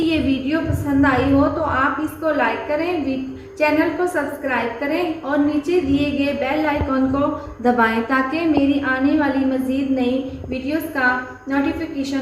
वीडियो पसंद आई हो तो आप इसको लाइक करें, चैनल को सब्सक्राइब करें और नीचे दिए गए बेल आइकॉन को दबाएं ताकि मेरी आने वाली मज़ीद नई वीडियोस का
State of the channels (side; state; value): both; identical; correlation 1.00